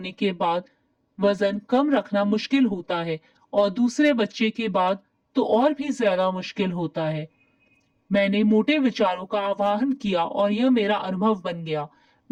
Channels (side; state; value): both; identical; correlation 1.00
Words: के बाद वजन कम रखना मुश्किल होता है और दूसरे बच्चे के बाद तो और भी ज्यादा मुश्किल होता है। मैंने मोटे विचारों का आवाहन किया और यह मेरा अनुभव बन गया।